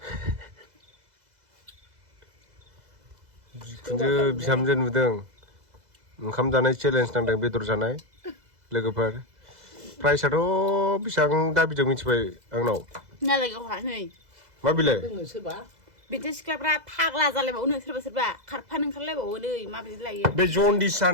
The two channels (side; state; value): left; late; 2.0 ms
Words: बिखुनजो बिहामजो नुदों ओंखाम जानाय चेलेन्ज नांदों बेदर जानाय लोगोफोर प्राइसआथ' बेसेबां दाबिदों मिथिबाय आंनाव मा बिलाय बिदि सिख्लाफ्रा फाग्ला जालायबावो सोरबा सोरबा खारफानो ओंखारलायबावो नै माबायदि लायो बे जन्दिस